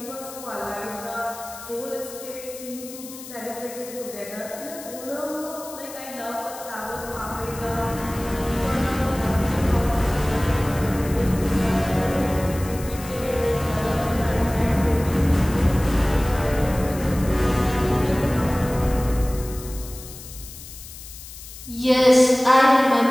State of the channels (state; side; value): noise; left; hiss, 15 dB below the sound